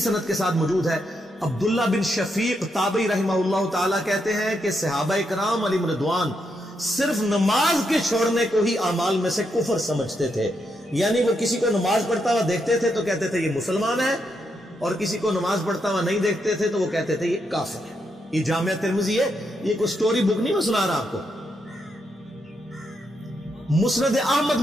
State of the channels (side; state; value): both; normal; correlation 0.81